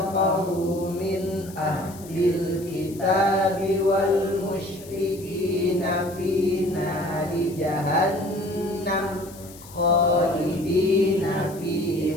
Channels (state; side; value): noise; left; hiss, 19 dB below the sound